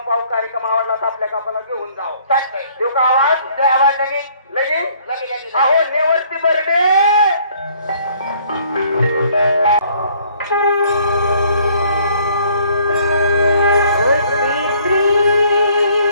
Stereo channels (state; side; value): inverted; both; correlation -0.61